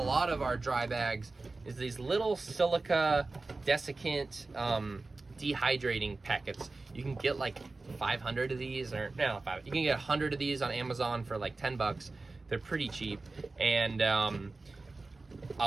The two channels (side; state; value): left; quieter; 3.5 dB